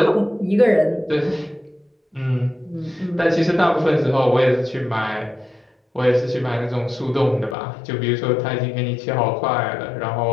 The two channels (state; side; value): drops out; right; at 7.6 s